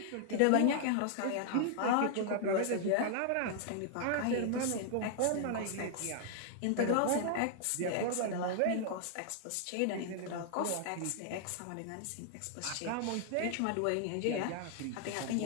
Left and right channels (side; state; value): both; different; correlation 0.00